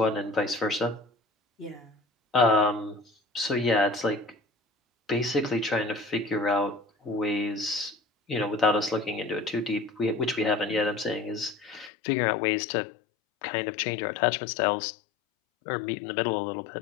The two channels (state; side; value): drops out; right; at 11.9 s